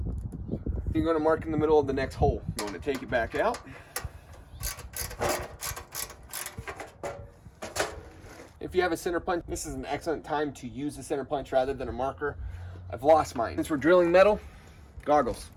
You're going to mark in the middle of the next hole. You're going to take it back out. If you have a center punch, this is an excellent time to use the center punch rather than a marker. I've lost mine. Since we're drilling metal, goggles.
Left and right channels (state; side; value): identical; both; correlation 1.00